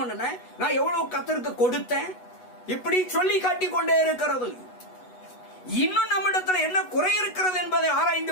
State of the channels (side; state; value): right; late; 8.1 ms